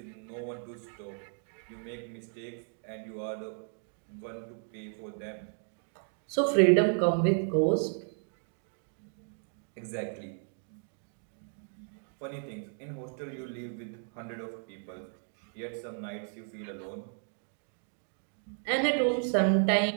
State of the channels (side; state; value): left; silent; 55 dB below the other